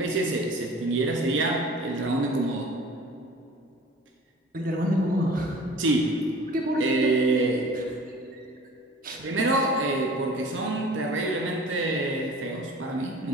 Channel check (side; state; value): both; normal; correlation 0.44